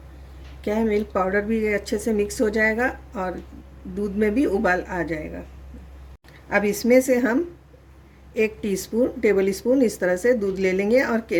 क्या है, मिल्क पाउडर भी अच्छे से मिक्स हो जाएगा और दूध में भी उबाल आ जाएगा। अब इसमें से हम 1 टेबल स्पून इस तरह से दूध ले लेंगे और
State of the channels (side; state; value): both; identical; correlation 1.00